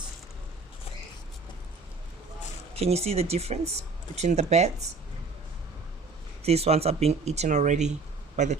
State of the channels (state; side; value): quieter; left; 4.1 dB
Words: Can you see the difference between the beds? These ones are being eaten already by the